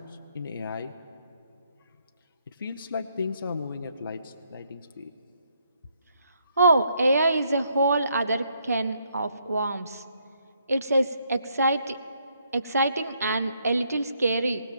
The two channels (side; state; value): both; inverted; correlation -0.72